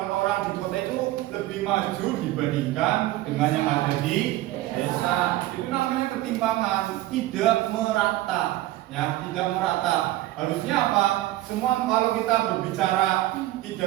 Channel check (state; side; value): quieter; left; 16.2 dB